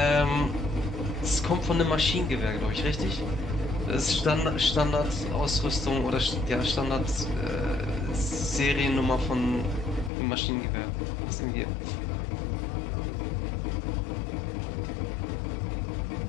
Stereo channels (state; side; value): drops out; right; at 10.1 s